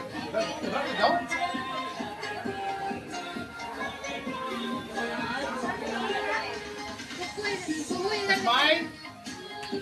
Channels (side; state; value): both; identical; correlation 1.00